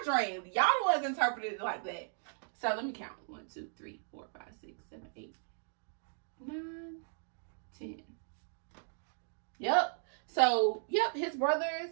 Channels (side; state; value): left; silent; digital silence